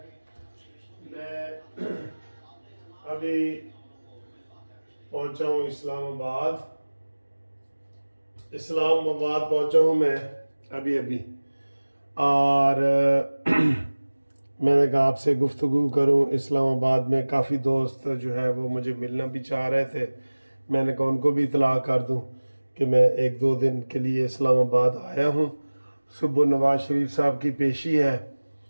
میں ابھی پہنچا ہوں اسلام آباد پہنچا ہوں میں ابھی اور میں نے کہا آپ سے گفتگو کروں۔ اسلام آباد میں کافی دوست جو ہے وہ مجھے ملنا بھی چاہ رہے تھے، میں نے کہا ان کو بھی اطلاع کر دوں کہ میں 1-2 دن کے لیے اسلام آباد آیا ہوں۔ صبح نواز شریف صاحب کی پیشی ہے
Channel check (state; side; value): inverted; both; correlation -1.00